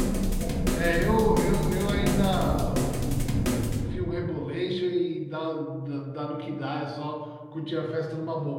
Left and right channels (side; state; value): both; identical; correlation 1.00